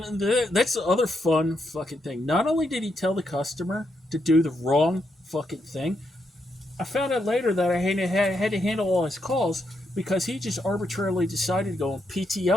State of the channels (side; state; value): both; normal; correlation 0.80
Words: that's the other fun fucking thing. Not only did he tell the customer to do the wrong fucking thing, I found out later that I had to handle all his calls because he just arbitrarily decided to go on